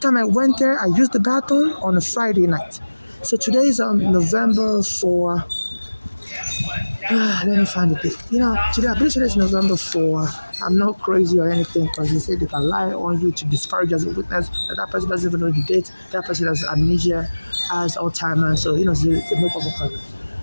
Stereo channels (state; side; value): inverted; both; correlation -1.00